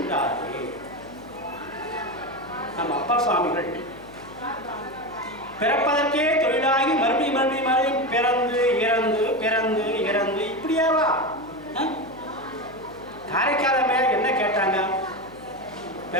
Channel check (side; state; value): left; noise; hum, 21 dB below the sound